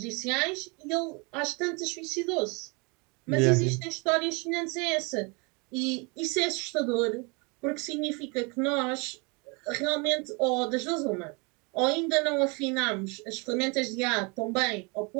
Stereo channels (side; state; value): left; quieter; 30.7 dB